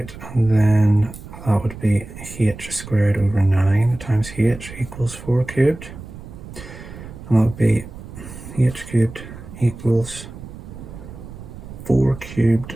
and then that would be h squared over 9 times h equals 4 cubed. And that would be h cubed equals 4 cubed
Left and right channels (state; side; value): noise; right; rumble, 14 dB below the sound